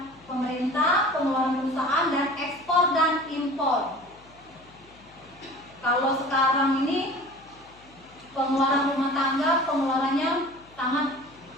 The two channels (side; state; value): left; noise; hum, 26 dB below the sound